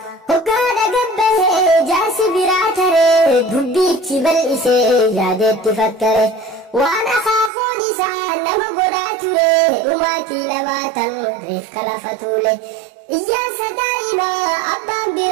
وقادا قبه جاسي براتري دبيتي بالإسي يادت تفكري وانا خافو نسان لما قداتولي وماتي لماتا ريف كلافتولي إياسا دائما أبان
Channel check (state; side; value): drops out; left; at 7.5 s